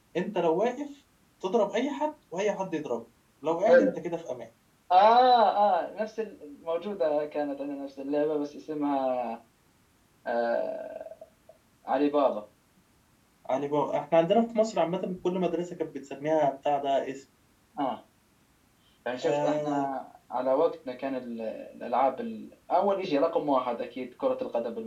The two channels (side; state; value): both; identical; correlation 1.00